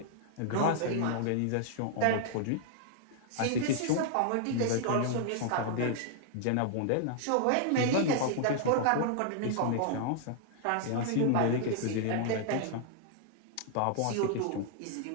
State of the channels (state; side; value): different; both; correlation 0.00